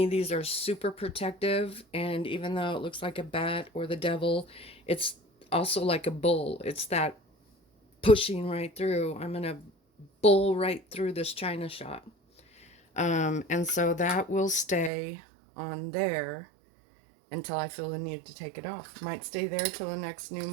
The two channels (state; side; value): drops out; left; at 14.9 s